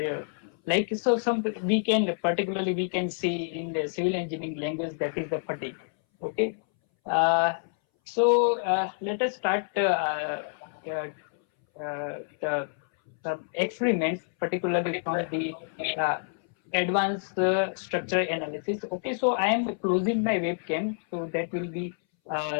like so, some particularly we can see in the civil engineering language that is the fatigue. Okay, let us start the experiments, particularly from the uh, advanced structure analysis. Okay, so I am closing my webcam, so that will be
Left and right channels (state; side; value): silent; right; 59 dB below the other